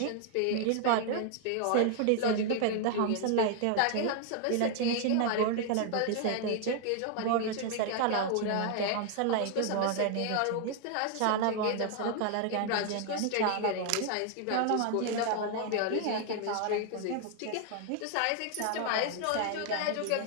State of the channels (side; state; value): both; different; correlation 0.00